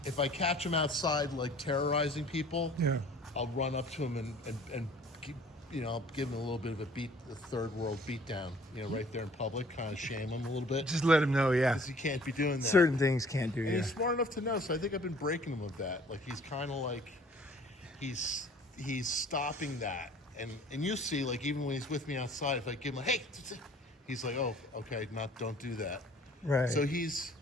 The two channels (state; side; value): normal; both; correlation 0.52